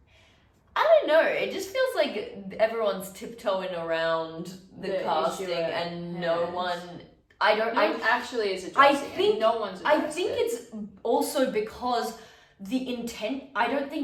I don't know. It just feels like everyone's tiptoeing around the casting, and no one. Actually is addressing no one's addressing I think it's also because the intent. I don't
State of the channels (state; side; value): identical; both; correlation 1.00